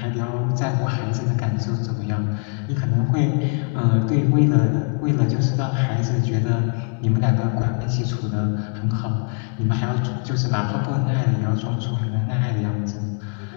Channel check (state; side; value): quieter; right; 38.8 dB